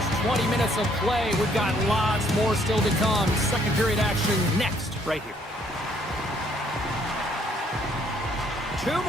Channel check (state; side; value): normal; both; correlation 0.66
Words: 20 minutes of play. We've got lots more still to come. Second period action next, right here. 2